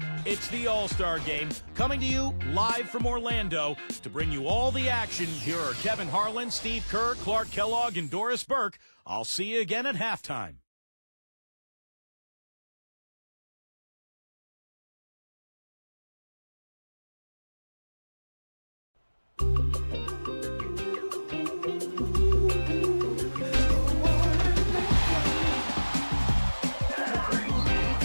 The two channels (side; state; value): both; inverted; correlation -1.00